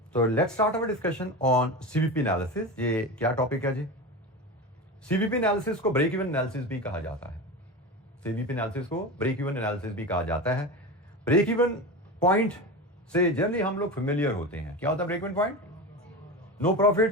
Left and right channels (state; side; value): normal; both; correlation 0.25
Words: तो let's start our discussion on CVP analysis. ये क्या टॉपिक है जी? CVP एनालिसिस को ब्रेक इवन एनालिसिस भी कहा जाता है। सीवीपी एनालिसिस को ब्रेक इवन एनालिसिस भी कहा जाता है। ब्रेक इवन पॉइंट से जनरली हम लोग फेमिलियर होते हैं। क्या होता है break even point? No